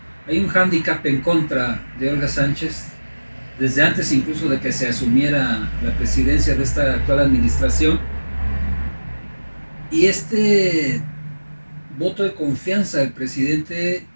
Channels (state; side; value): inverted; both; correlation -1.00